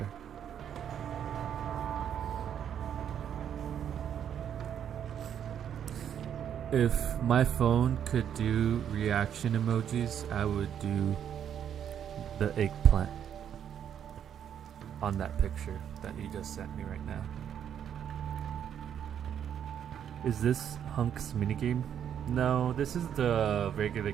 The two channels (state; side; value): quieter; left; 9.1 dB